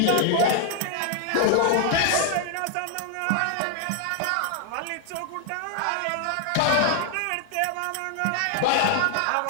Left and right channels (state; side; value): different; both; correlation 0.00